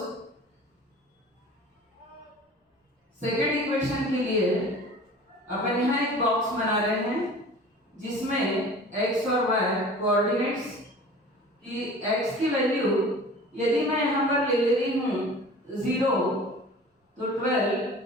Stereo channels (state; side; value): normal; both; correlation 0.42